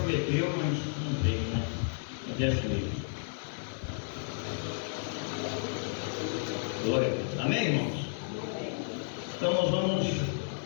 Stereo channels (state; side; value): silent; right; digital silence